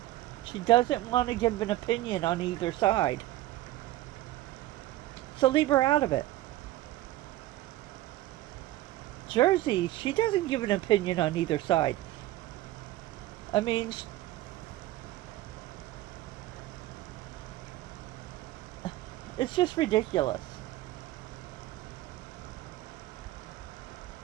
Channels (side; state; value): left; quieter; 15.9 dB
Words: She doesn't want to give an opinion on either side. So leave her out of it. Jersey, she doesn't give an opinion on either side. I mean, it's just ridiculous.